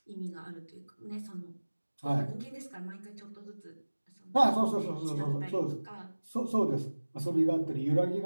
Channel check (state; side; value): inverted; both; correlation -1.00